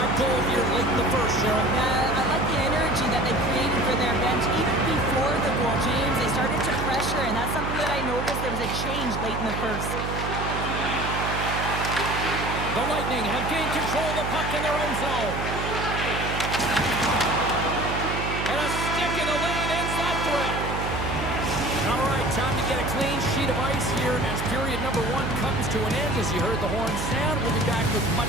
goal here late in the first, Cheryl. I like the energy that they created for their bench even before the goal, James. They started to pressure, and that's something that I noticed. There was a change late in the first. The Lightning have gained control of the puck in their own zone. And a stick in the lane ends that threat. All right, time to get a clean sheet of ice here as period number 1 comes to an end. As you heard the horn sound, we'll be back with much,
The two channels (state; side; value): noise; right; hum, 4 dB below the sound